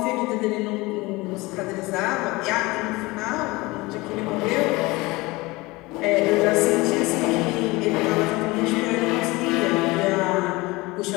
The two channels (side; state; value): right; quieter; 22.3 dB